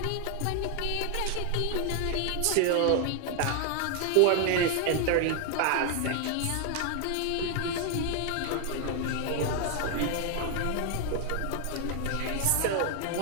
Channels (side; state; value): both; different; correlation 0.00